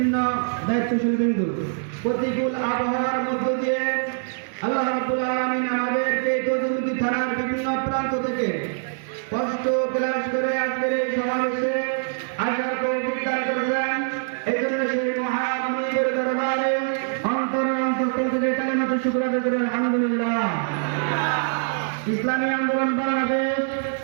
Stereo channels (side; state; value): left; silent; digital silence